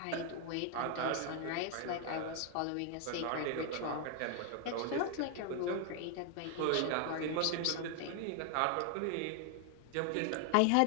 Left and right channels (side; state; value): both; different; correlation 0.00